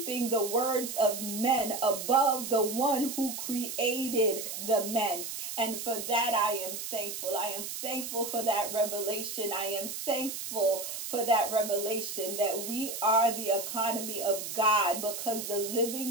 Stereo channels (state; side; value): noise; right; hiss, 6 dB below the sound